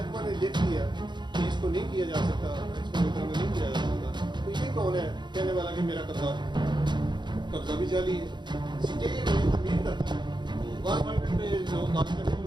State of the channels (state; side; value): late; left; 0.22 ms